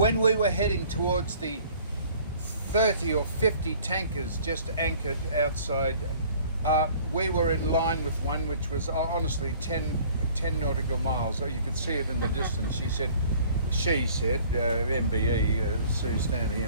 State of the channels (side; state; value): both; inverted; correlation -0.53